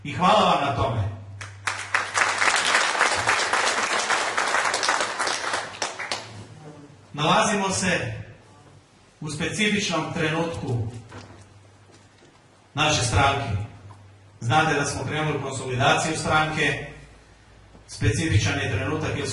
i hvala vam na tome. Nalazimo se u specifičnom trenutku naše stranke. Znate da smo krenuli konsolidaciju stranke. Specifičan je trenutak jer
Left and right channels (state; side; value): identical; both; correlation 1.00